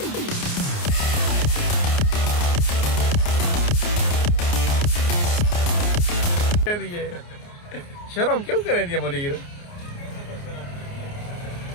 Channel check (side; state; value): right; late; 29 ms